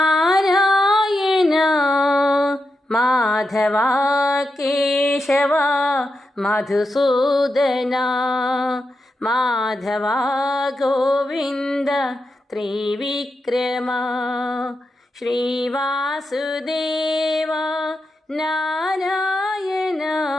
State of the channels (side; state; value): both; normal; correlation 0.87